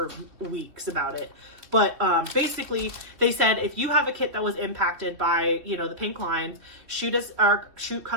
weeks about it. But basically, they said if you have a kit that was impacted by, the pink lines, shoot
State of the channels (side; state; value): left; late; 3.2 ms